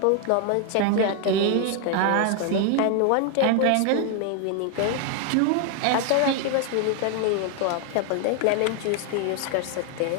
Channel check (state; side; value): different; both; correlation 0.00